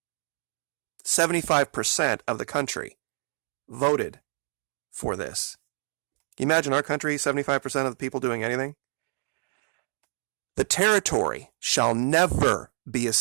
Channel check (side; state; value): left; silent; 60 dB below the other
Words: 75% of the country voted for this. Can you imagine our country, 75% of the people doing anything? The territory shall never be